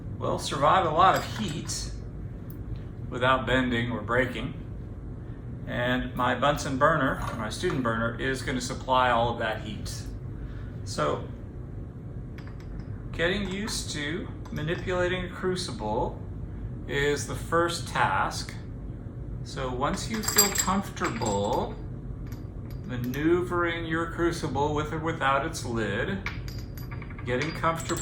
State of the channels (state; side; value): identical; both; correlation 1.00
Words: well, survive a lot of heat without bending or breaking. And my Bunsen burner, or my student burner, is going to supply all of that heat. So, getting used to manipulating a crucible is the first task. So once you feel comfortable maneuvering your crucible with or without its lid, getting